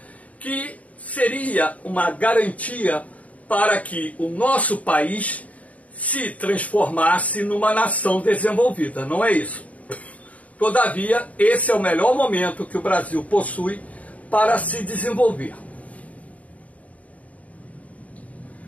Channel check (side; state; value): right; late; 0.069 ms